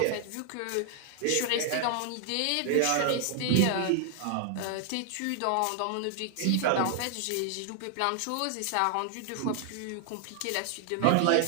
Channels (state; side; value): different; both; correlation 0.00